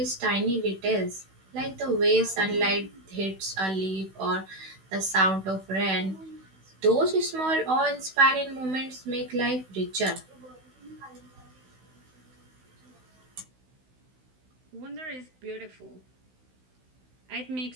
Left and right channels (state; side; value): late; left; 16 ms